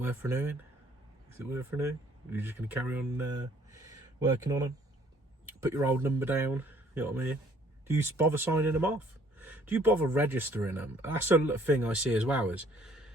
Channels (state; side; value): normal; both; correlation 0.60